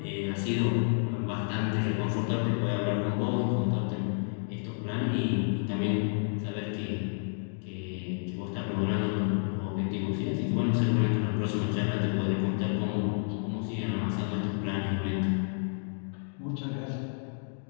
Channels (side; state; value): right; silent; digital silence